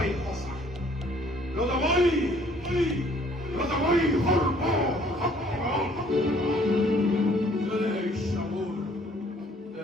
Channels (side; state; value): both; normal; correlation 0.60